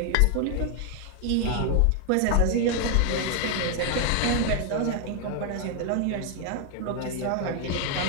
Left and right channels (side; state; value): both; different; correlation 0.00